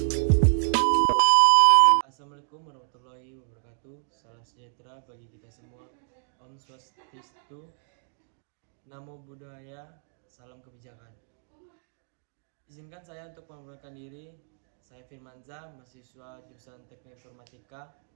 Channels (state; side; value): silent; left; digital silence